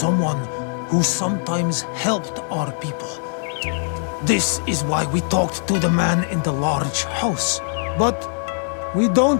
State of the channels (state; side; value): silent; right; 63 dB below the other